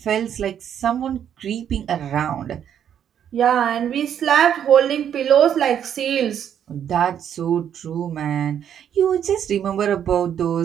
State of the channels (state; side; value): quieter; left; 9.2 dB